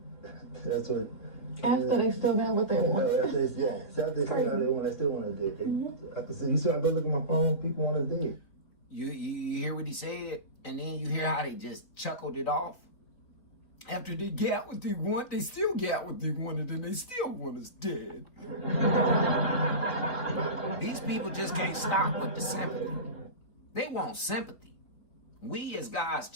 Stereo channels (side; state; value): right; late; 4.1 ms